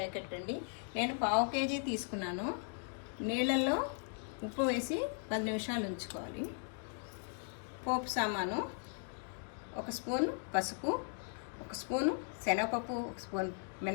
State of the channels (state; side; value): silent; right; 53 dB below the other